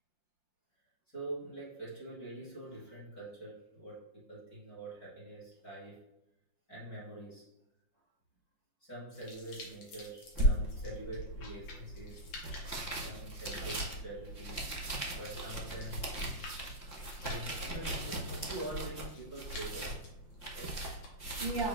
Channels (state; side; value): late; right; 5.7 ms